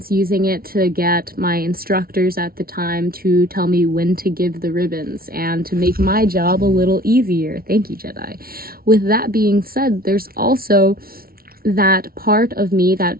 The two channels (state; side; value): late; left; 0.43 ms